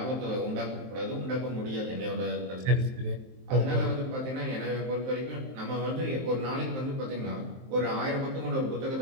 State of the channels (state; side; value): late; left; 23 ms